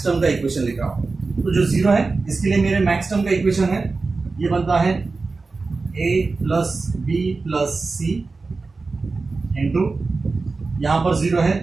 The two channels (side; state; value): left; quieter; 3.9 dB